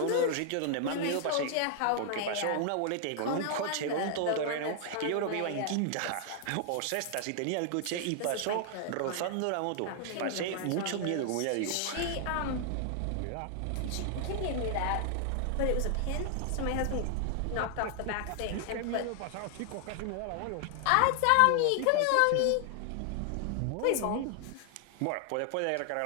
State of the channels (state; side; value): different; both; correlation 0.00